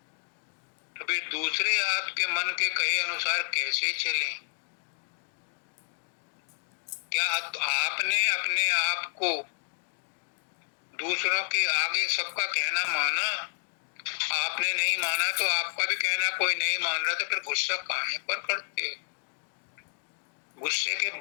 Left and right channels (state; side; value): silent; right; digital silence